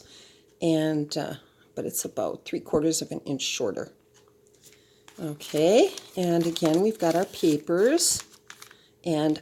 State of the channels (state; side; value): identical; both; correlation 1.00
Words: And but it's about 3/4 of an inch shorter. Okay, and again we've got our papers